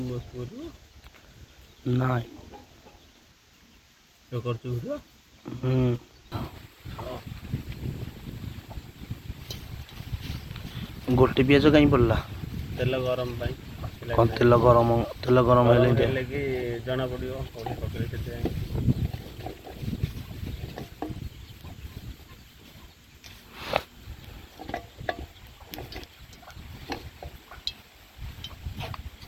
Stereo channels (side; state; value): both; identical; correlation 1.00